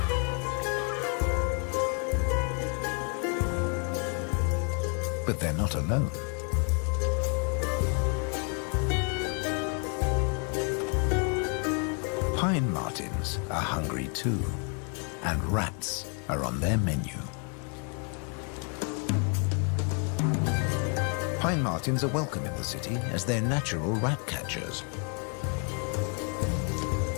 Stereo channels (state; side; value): quieter; right; 39.3 dB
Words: But they're not alone. Pine martins are hungry too, and rats are on their menu. Pine martins are welcome in the city as they're natural rat catchers.